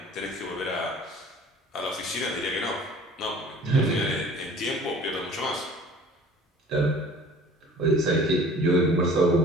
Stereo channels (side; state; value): both; normal; correlation 0.48